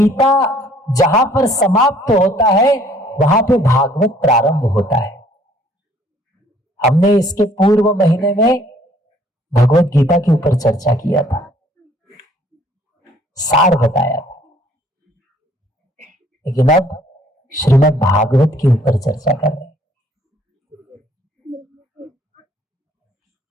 जहां पर समाप्त होता है, वहां पे भागवत प्रारंभ होता है। हमने इसके पूर्व महीने में भगवत गीता के ऊपर चर्चा किया था, सार बताया था, लेकिन अब श्रीमद् भागवत के ऊपर चर्चा कर रहे हैं।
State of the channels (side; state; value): both; normal; correlation 0.59